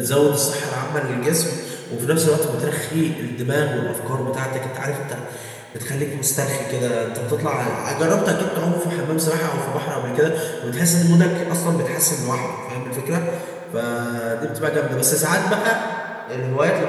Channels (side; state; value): both; identical; correlation 1.00